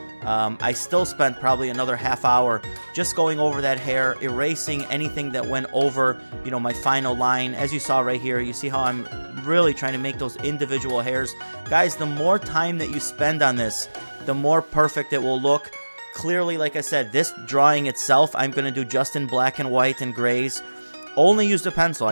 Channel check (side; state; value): both; inverted; correlation -1.00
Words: I still spent probably another half hour just going over that hair, erasing anything that went over, you know, my final line. As you saw right here, you see how I'm really trying to make those individual hairs. Guys, the more time that you spend on this, the more perfect it will look. Clearly, like I said, this drawing itself, I'm going to do just in black and white and grays. Only used a pencil.